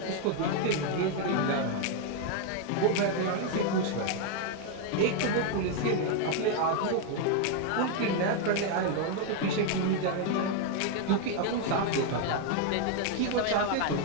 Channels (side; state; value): both; different; correlation 0.01